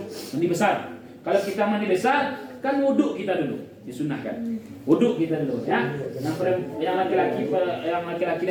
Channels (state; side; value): identical; both; correlation 1.00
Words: mandi besar. Kalau kita mandi besar, kan wuduk kita dulu, disunahkan. Wuduk kita dulu, ya. Yang laki-laki